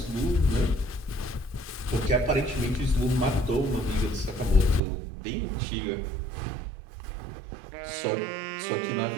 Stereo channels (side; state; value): left; drops out; at 4.8 s